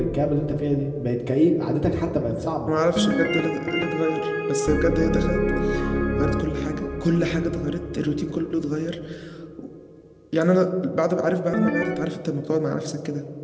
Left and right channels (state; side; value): identical; both; correlation 1.00